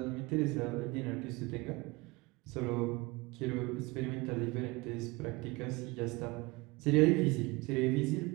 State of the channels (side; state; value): left; quieter; 24.0 dB